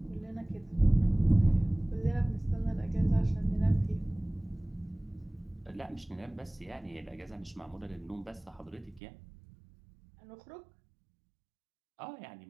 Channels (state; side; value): drops out; left; at 9.0 s